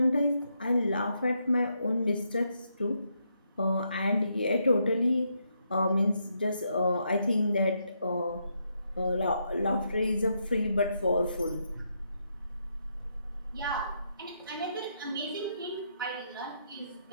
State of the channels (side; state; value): both; inverted; correlation -0.79